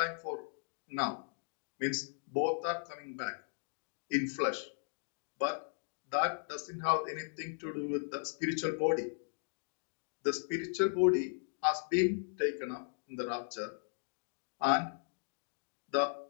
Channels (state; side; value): silent; right; digital silence